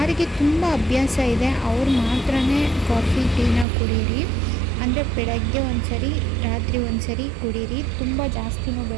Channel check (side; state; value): left; drops out; at 3.7 s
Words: ತುಂಬ ಅಭ್ಯಾಸ ಇದೆ ಅವ್ರು ಮಾತ್ರ ಕಾಫಿ ಟೀನ ಕುಡೀರಿ. ಅಂದರೆ ಬೆಳಗ್ಗೆ ಒಂದ್ಸರಿ, ರಾತ್ರಿ ಒಂದ್ಸರಿ ಕುಡೀರಿ, ತುಂಬ ಜಾಸ್ತಿನೂ